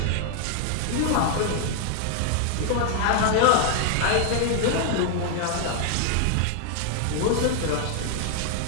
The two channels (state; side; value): different; both; correlation 0.00